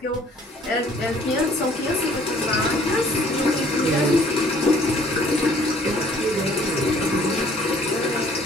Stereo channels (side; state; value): both; normal; correlation 0.57